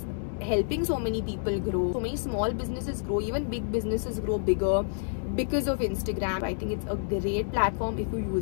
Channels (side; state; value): right; silent; digital silence